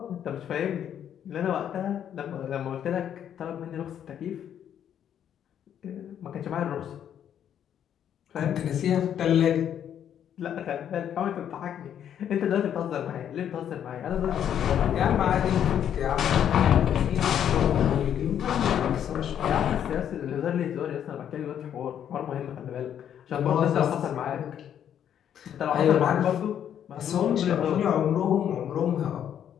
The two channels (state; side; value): quieter; right; 9.5 dB